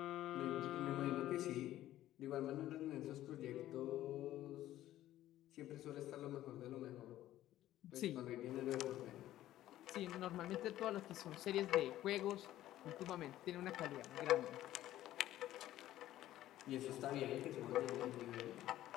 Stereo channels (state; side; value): quieter; right; 13.8 dB